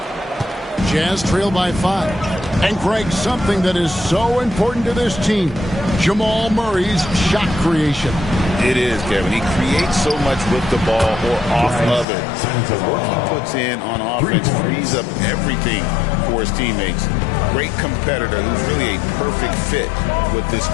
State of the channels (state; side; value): drops out; right; at 12.1 s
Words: Jazz trail by 5. And Greg, something that is so important to this team, Jamal Murray's shot creation. It is, Kevin. He creates so much with the ball or off of it. The work he puts in on offense frees up everything for his teammates. Great competitor who's really a perfect fit with this